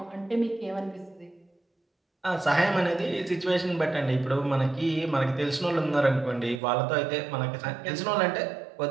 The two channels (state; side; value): drops out; left; at 6.6 s